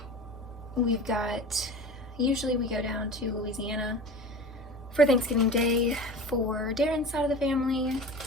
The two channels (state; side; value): normal; both; correlation 0.34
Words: Usually we go down to Louisiana for Thanksgiving Day for Darren's side of the family,